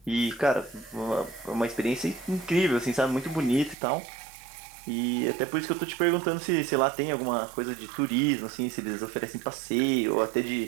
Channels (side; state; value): left; drops out; at 3.8 s